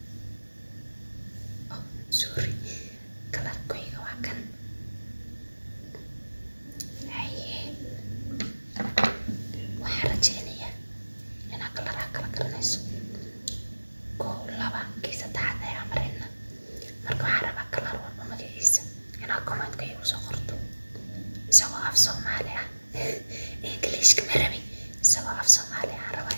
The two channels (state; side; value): inverted; both; correlation -1.00